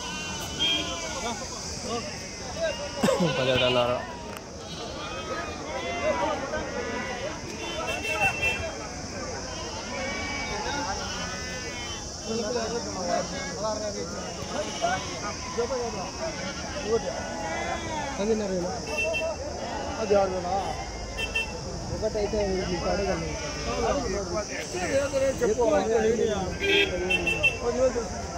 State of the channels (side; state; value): both; identical; correlation 1.00